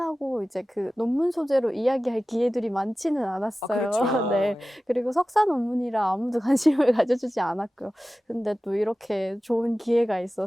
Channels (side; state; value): both; normal; correlation 0.95